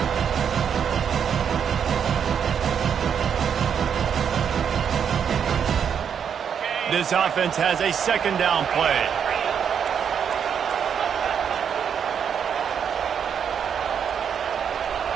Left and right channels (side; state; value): left; quieter; 7.7 dB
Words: This offense has a second down play.